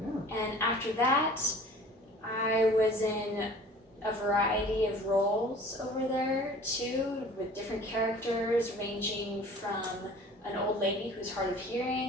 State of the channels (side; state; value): both; normal; correlation 0.46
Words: yeah. And after that, I was in a variety of roles over there too, with different characters ranging from an old lady who's hard of